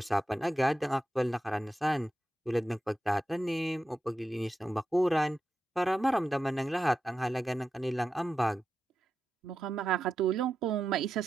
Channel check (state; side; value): normal; both; correlation 0.89